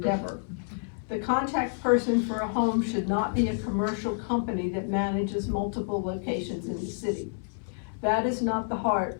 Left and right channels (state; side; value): silent; right; 59 dB below the other